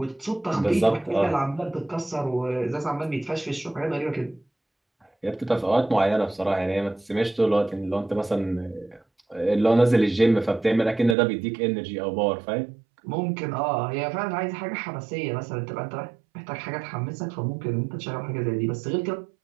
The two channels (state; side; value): drops out; left; at 11.2 s